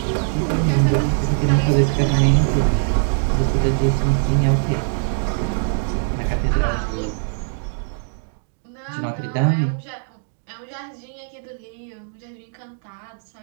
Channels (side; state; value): left; silent; digital silence